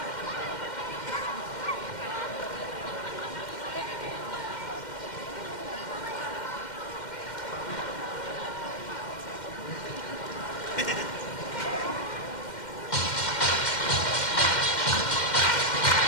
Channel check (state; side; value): late; right; 2.1 ms